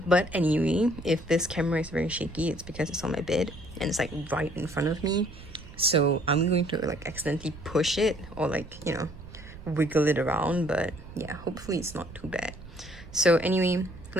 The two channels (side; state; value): right; noise; rumble, 16 dB below the sound